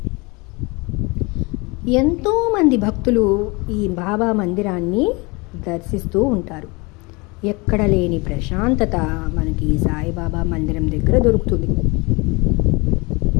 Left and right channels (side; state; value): right; quieter; 26.7 dB